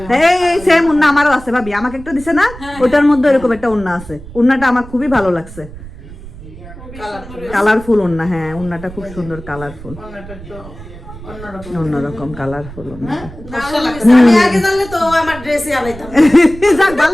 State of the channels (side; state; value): right; noise; rumble, 15 dB below the sound